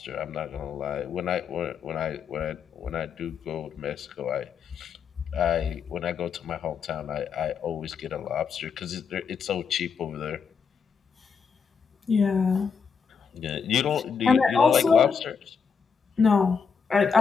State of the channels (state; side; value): quieter; right; 6.1 dB